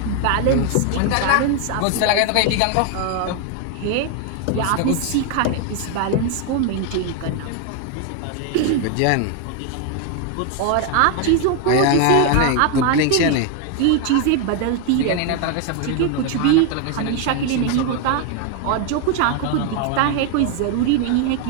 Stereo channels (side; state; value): both; different; correlation 0.01